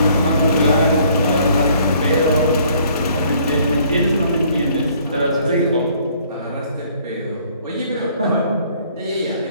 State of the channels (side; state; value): both; inverted; correlation -0.61